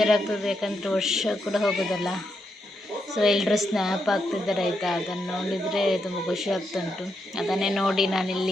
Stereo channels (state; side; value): normal; both; correlation 0.82